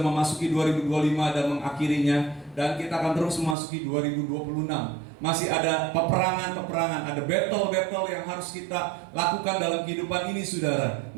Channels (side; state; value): left; drops out; at 3.6 s